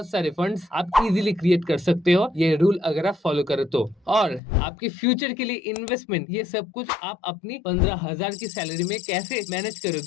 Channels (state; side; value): drops out; right; at 4.4 s